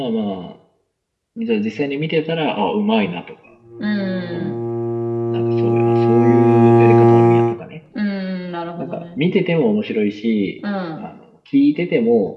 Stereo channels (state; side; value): identical; both; correlation 1.00